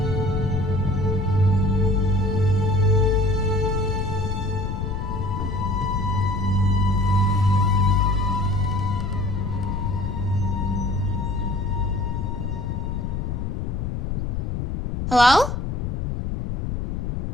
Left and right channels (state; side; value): noise; left; rumble, 2 dB below the sound